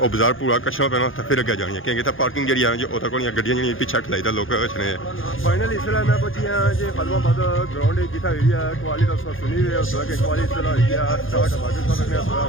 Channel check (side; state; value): right; late; 0.59 ms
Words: बाजार पूरा कच्छा पैना तो फिर अगे जानी है क्योंकि पार्किंग जी है जी वो तक गड्डियां जी पिछा खलाई था लोग कछने फाइनल इसलिए मैं पहुंची हाँ जी खादमाबाद ग्राउंड जितना हुई है कवाली तो सुनी हुई है उस कि कवाली स्टार्ट बाकी